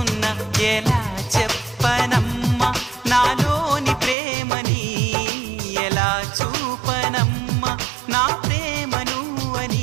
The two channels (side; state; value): left; drops out; at 4.2 s